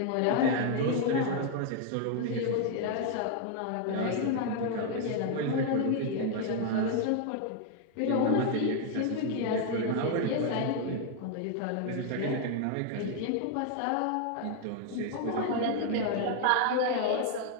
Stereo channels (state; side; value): different; both; correlation 0.00